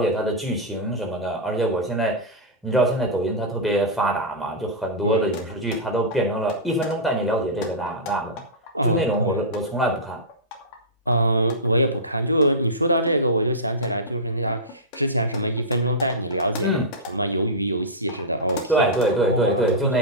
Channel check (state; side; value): normal; both; correlation -0.13